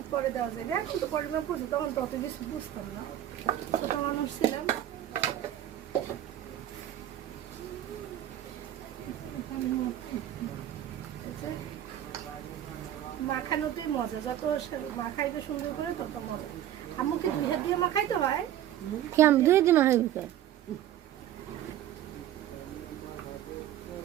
করে দেওয়া যায় এখন তো পরিমাণ বুঝি তখন তো অত বেশি বুঝতাম না ছোট মানুষ ছিলাম মাখানোতেই মজা যত মাখাইতে সুন্দর করে তত মজা আম্মুকে দুই হাত দিয়ে মাখাইতে হয় কি আমি দুই দিন হয়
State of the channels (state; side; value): quieter; left; 11.8 dB